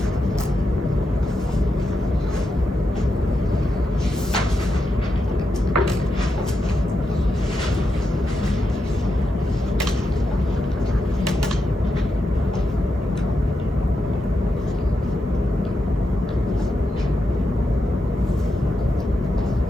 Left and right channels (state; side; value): normal; both; correlation 0.86